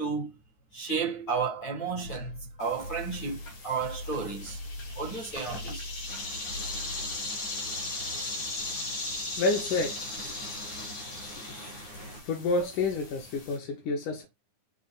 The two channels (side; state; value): right; late; 9.2 ms